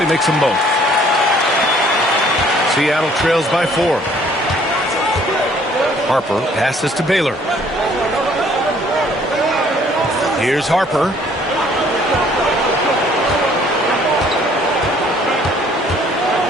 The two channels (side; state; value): both; normal; correlation 0.59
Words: makes them both. Seattle trails by 4. Harper passes to Baylor. Here's Harper.